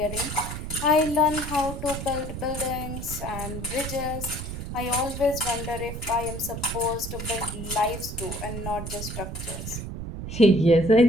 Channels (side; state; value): right; noise; rumble, 7 dB below the sound